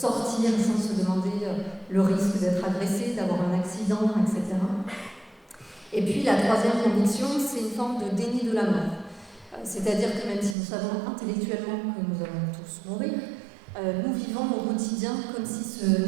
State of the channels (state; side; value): drops out; left; at 10.6 s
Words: sans se demander le risque d'être agressé, d'avoir un accident, etc. Et puis la troisième conviction, c'est une forme de déni de la mort. C'est-à-dire que même si nous savons intellectuellement que nous allons tous mourir, nous vivons au quotidien comme si ce